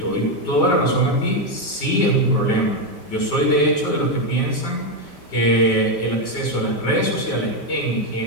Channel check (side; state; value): right; late; 5.1 ms